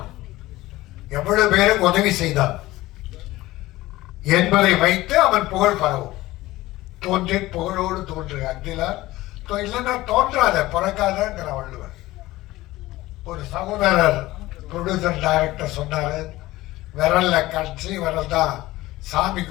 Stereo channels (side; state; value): right; quieter; 17.8 dB